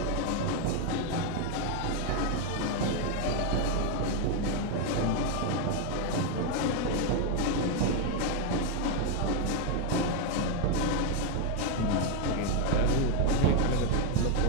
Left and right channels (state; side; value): different; both; correlation 0.01